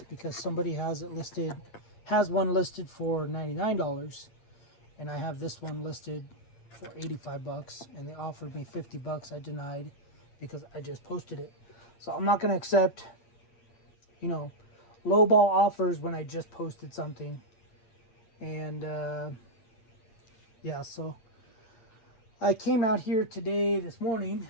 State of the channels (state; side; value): late; right; 8.7 ms